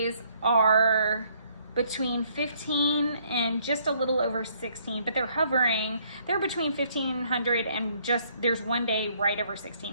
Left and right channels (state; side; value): inverted; both; correlation -0.66